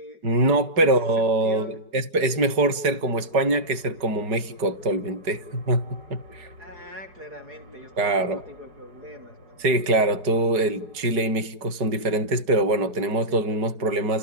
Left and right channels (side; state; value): left; late; 4.8 ms